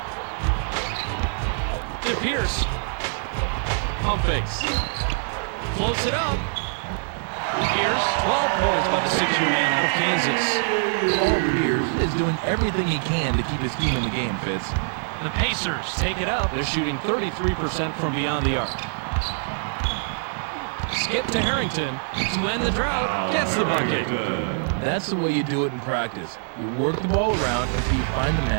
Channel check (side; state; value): left; silent; digital silence